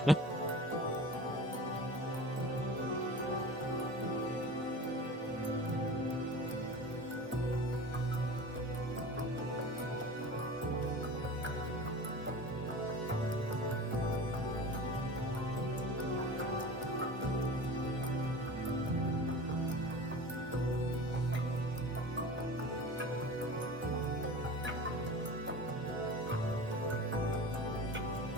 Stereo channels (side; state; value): both; normal; correlation 0.36